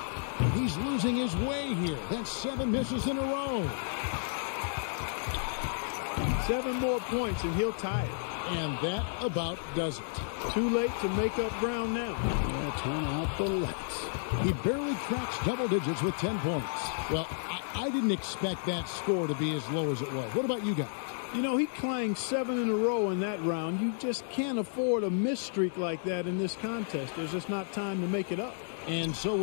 He's losing his way here. That's 7 misses in a row. 7 more points and he'll tie it. And that about does it. Too late to make up ground now. Yeah, turn out the lights. He barely cracks double digits with 10 points. Well, I didn't expect that score to be as low as it was. What about you guys? You know, he clanged 7 in a row in that round. You just can't afford a miss streak like that in this contest. There's just not time to make it up. And so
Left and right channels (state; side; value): silent; right; digital silence